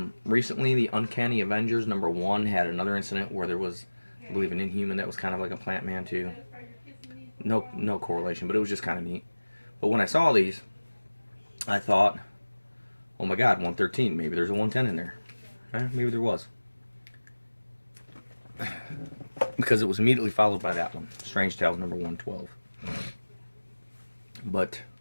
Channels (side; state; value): both; inverted; correlation -1.00